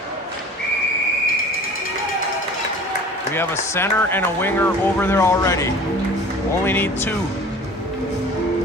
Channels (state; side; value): normal; both; correlation 0.43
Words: We have a center and a winger over there already. Only need 2.